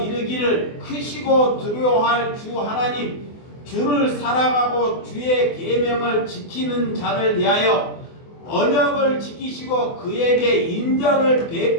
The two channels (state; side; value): late; right; 24 ms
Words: 이르기를 크시고 두려워할 주 하나님 주를 사랑하고 주의 계명을 지키는 자를 위하여 언약을 지키시고 그에게 인자를